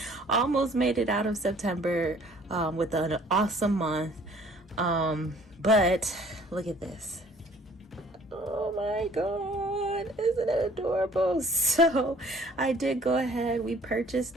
Almost made it out of September with an awesome month. But look at this. Oh my god, isn't it adorable? So I did go ahead, we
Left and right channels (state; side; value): normal; both; correlation 0.55